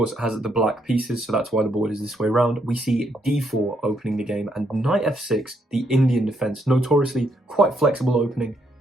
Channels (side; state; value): both; normal; correlation 0.75